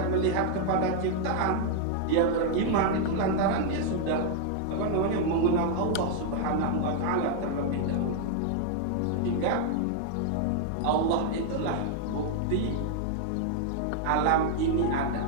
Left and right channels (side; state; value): both; different; correlation 0.00